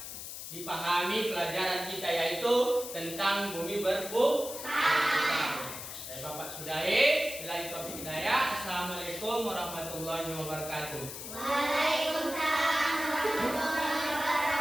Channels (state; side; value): noise; left; hiss, 9 dB below the sound